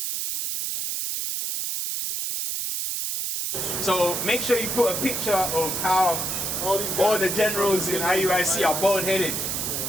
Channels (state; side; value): noise; right; hiss, 2 dB below the sound